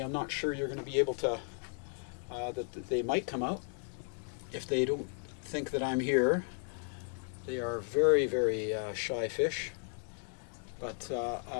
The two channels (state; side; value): silent; right; 55 dB below the other